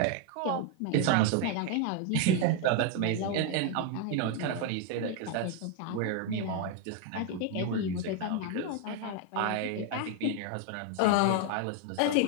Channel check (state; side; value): different; both; correlation 0.01